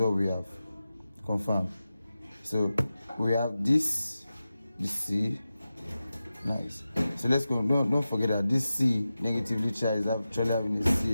we have. Confirm. So we have this, the C. Nice. So let's go. Don't forget that this C negatively charged is actually having a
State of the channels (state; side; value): inverted; both; correlation -0.93